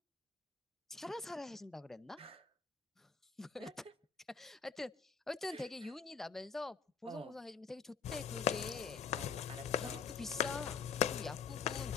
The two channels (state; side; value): quieter; right; 6.4 dB